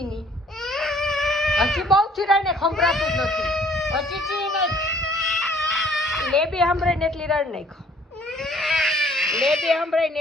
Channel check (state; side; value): normal; both; correlation 0.59